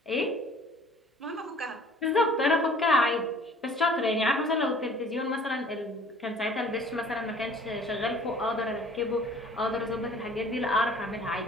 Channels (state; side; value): normal; both; correlation 0.52